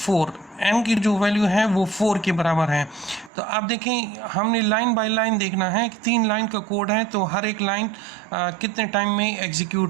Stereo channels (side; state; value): left; drops out; at 3.3 s